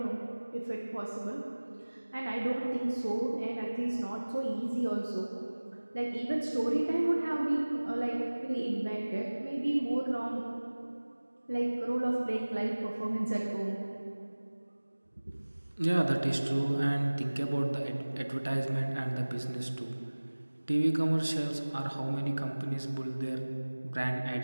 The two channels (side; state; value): both; inverted; correlation -1.00